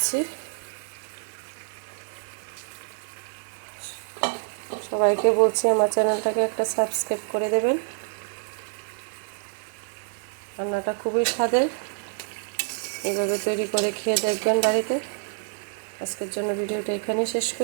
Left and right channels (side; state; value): left; silent; digital silence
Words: সবাইকে বলছি আমার চ্যানেলটাকে একটা সাবস্ক্রাইব করে দেবেন। রান্নাটা খুবই স্বাদের, এইভাবে তৈরি করে খেয়ে দেখবেন বাড়িতে। আজকের জন্য ভিডিওটা এখানেই শেষ